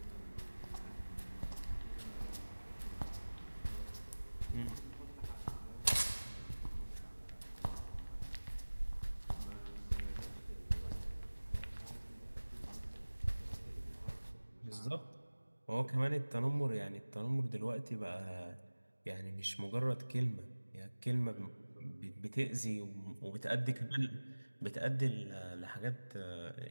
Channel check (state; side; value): inverted; both; correlation -1.00